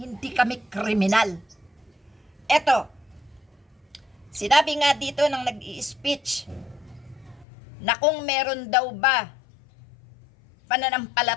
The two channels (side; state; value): right; drops out; at 7.5 s